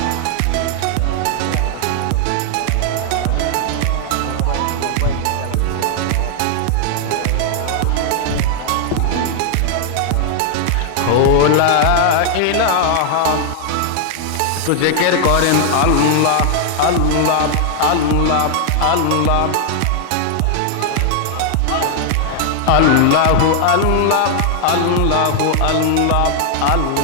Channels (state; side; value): different; both; correlation 0.00